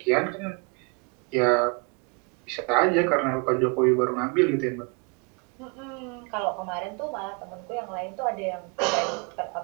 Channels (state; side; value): quieter; left; 32.2 dB